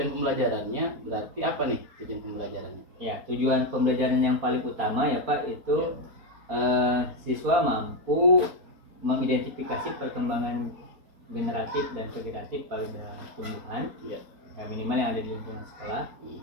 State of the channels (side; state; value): left; late; 4.2 ms